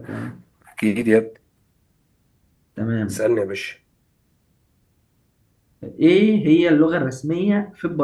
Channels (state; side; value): identical; both; correlation 1.00